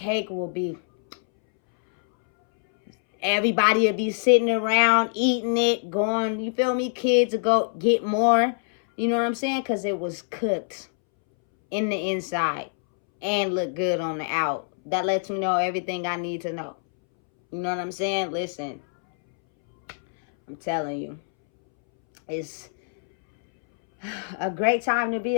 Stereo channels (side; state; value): right; silent; 62 dB below the other